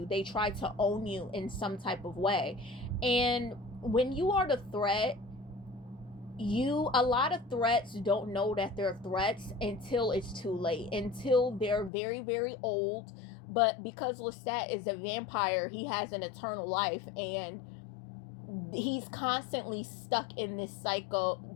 They try to own you in some type of way. And when you are the threat, a lot of threats don't know that they're threats until it's too late, until they're very, very old. But because Lestat is a vampire, he has an eternal life, and he's constantly stuck in this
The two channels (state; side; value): drops out; right; at 11.9 s